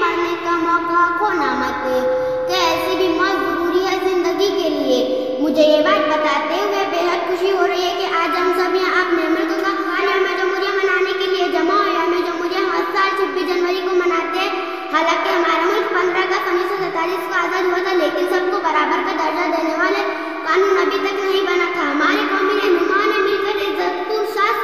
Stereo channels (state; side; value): identical; both; correlation 1.00